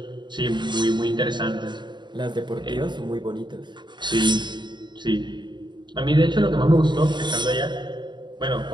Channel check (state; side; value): late; left; 0.22 ms